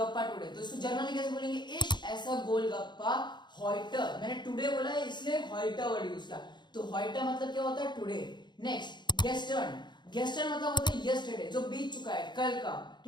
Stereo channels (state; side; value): late; right; 0.21 ms